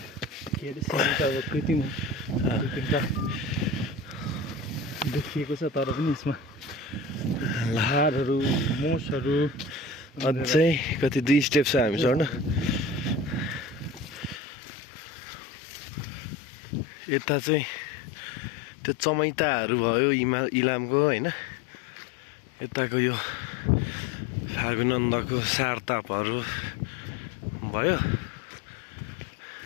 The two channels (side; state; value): right; drops out; at 14.4 s